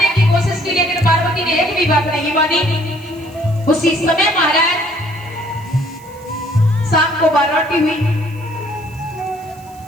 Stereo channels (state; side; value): noise; right; hiss, 26 dB below the sound